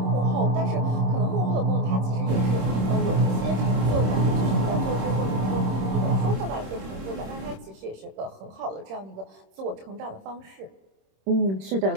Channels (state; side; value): late; left; 26 ms